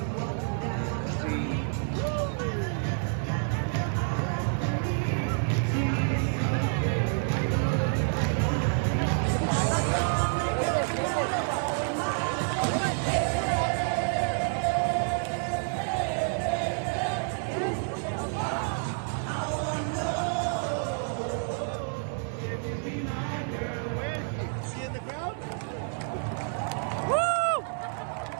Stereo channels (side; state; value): left; silent; 59 dB below the other